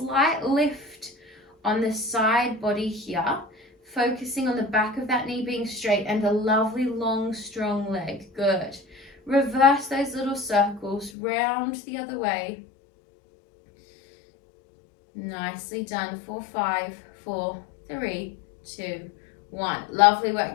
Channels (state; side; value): drops out; right; at 11.1 s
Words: lift on the side body here, focusing on the back of that knee being straight and a lovely long strong leg. Good. Reverse those little circles, round the other way. Nicely done. 4, 5, 4, 3, 2, 1. Lovely work.